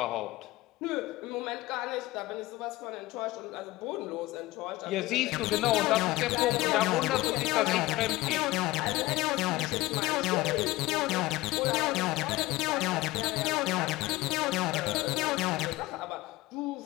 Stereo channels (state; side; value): quieter; right; 19.1 dB